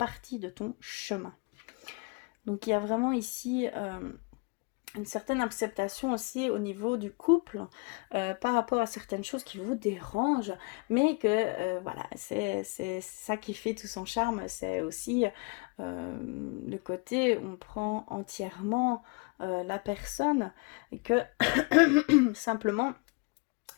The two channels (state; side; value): quieter; right; 31.2 dB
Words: de ton chemin. Donc il y a vraiment ici une certaine acceptation aussi au niveau du couple par rapport à certaines choses qui vous dérangent, mais que voilà, c'est ça qui fait tout son charme, c'est aussi le côté où on prend entièrement la personne et que simplement